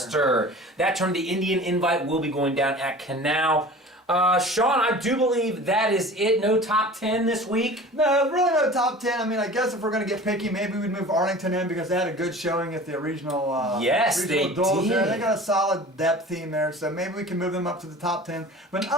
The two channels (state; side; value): normal; both; correlation 0.40